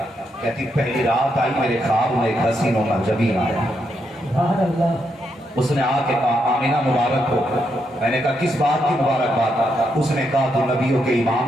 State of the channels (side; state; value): both; normal; correlation 0.80